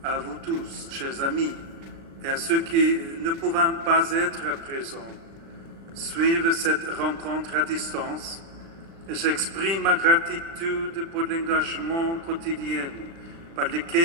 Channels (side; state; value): left; late; 36 ms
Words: À vous tous, chers amis, et à ceux qui ne pouvant pas être présents, suivent cette rencontre à distance et j'exprime ma gratitude pour l'engagement quotidien par